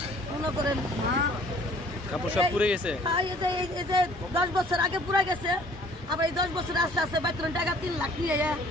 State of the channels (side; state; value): both; normal; correlation 0.54